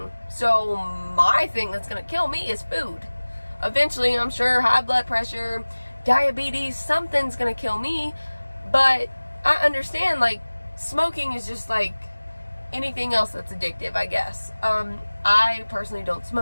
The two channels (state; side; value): inverted; both; correlation -1.00